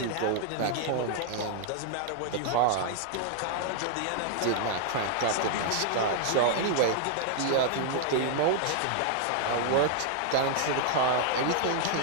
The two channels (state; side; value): different; both; correlation 0.00